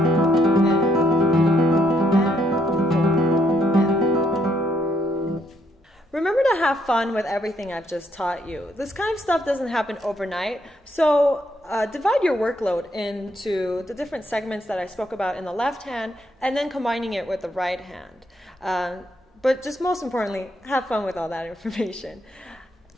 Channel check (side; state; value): both; normal; correlation 0.73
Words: 4, and. Remember to have fun with everything I've just taught you. This kind of stuff doesn't happen overnight, so divide your workload into the different segments that I spoke about in the left hand and then combining it with the right hand. But just most importantly, have fun with all that information.